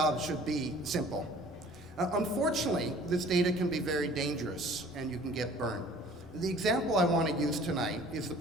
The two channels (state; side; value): noise; right; rumble, 26 dB below the sound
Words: should be simple. Unfortunately, this data can be very dangerous and you can get burned. The example I want to use tonight is the